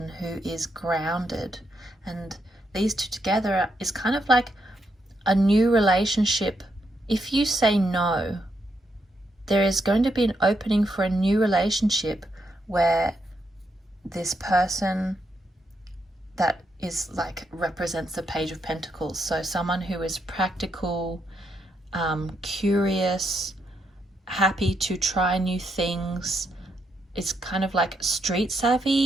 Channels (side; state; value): both; normal; correlation 0.80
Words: who is grounded. And these two together is kind of like a new relationship. If you say no, there is going to be an opening for a new relationship where this person that is like represents the Page of Pentacles. So someone who is practical, curious, happy to try new things, is kind of like street